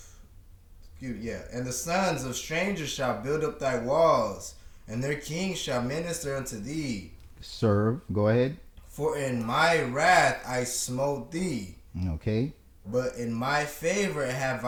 strangers shall build up thy walls, and their kings shall minister unto thee. Serve. Go ahead. For in my wrath I smote thee, Okay. but in my favor have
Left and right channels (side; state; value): both; identical; correlation 1.00